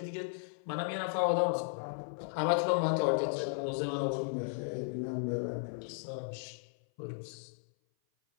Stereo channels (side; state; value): right; silent; 54 dB below the other